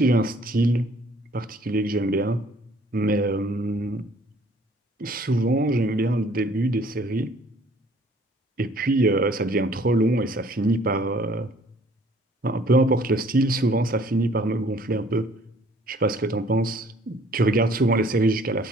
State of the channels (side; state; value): both; normal; correlation 0.57